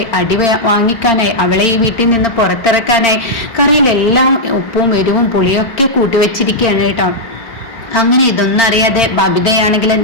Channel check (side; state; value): right; late; 4.4 ms